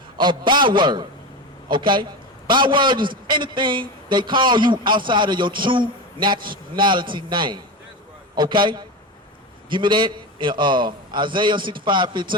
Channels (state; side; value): normal; both; correlation 0.22